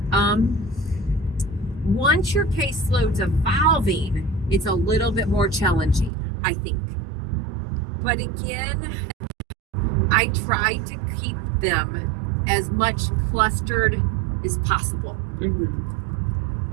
Once your caseload's evolving, it's a little bit more challenging, I think. But again, I try to keep them as much clustered as possible.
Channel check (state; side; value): drops out; left; at 6.1 s